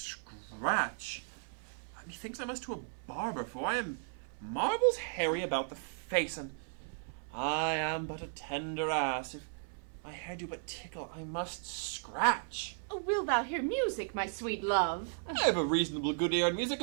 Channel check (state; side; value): silent; left; 54 dB below the other